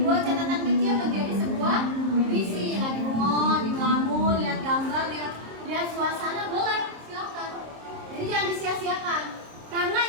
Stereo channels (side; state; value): left; late; 26 ms